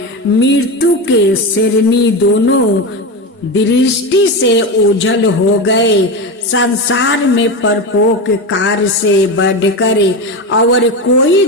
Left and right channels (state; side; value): normal; both; correlation 0.19